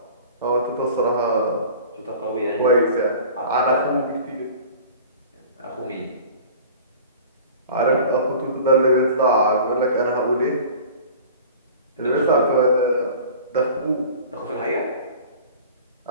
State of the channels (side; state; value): both; inverted; correlation -0.42